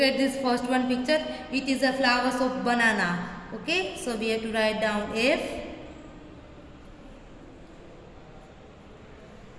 this first one picture. It is a flowers of banana. Okay. So we have to write down F.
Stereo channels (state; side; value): identical; both; correlation 1.00